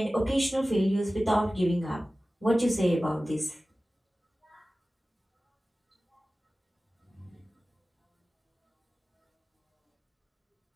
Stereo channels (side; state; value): both; normal; correlation 0.96